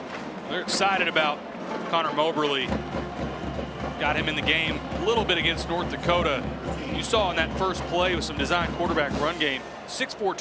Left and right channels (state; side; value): identical; both; correlation 1.00